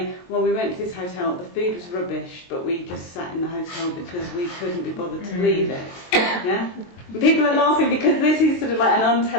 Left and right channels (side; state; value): right; late; 22 ms